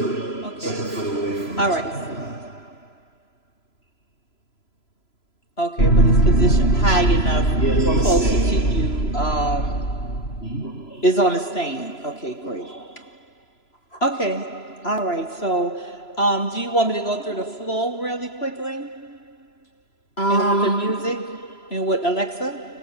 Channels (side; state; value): right; late; 3.0 ms